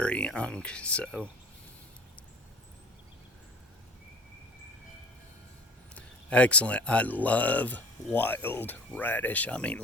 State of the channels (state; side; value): normal; both; correlation 0.43